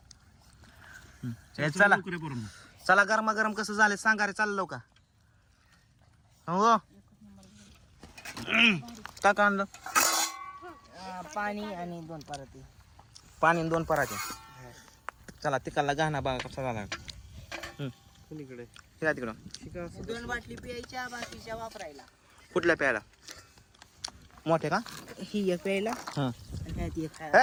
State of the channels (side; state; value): both; identical; correlation 1.00